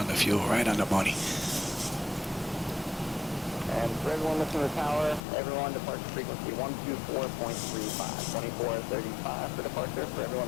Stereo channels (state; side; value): drops out; right; at 5.2 s